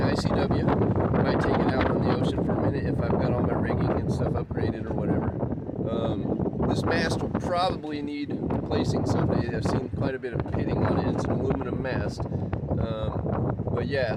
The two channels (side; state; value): both; identical; correlation 1.00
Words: ICW. I might take it out on the ocean for a minute if I've got all my rigging and stuff upgraded or whatever. This mast will probably need replacing someday. I've seen quite a bit of pitting on it. It's an aluminum mast. But